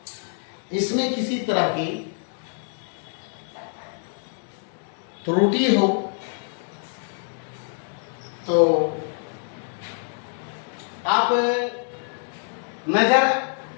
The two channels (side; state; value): right; silent; 61 dB below the other